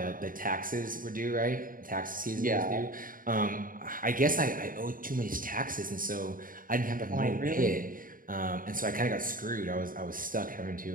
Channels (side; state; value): left; late; 0.40 ms